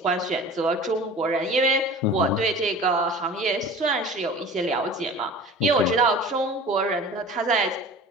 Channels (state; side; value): normal; both; correlation 0.40